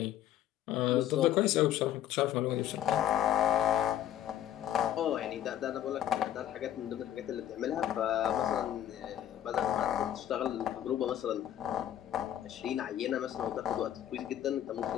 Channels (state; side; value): quieter; right; 11.4 dB